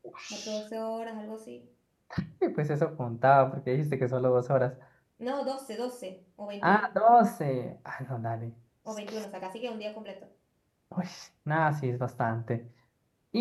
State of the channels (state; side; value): identical; both; correlation 1.00